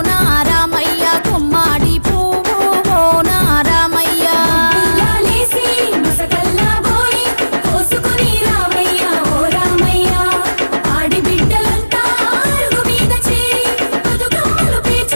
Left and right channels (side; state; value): both; inverted; correlation -1.00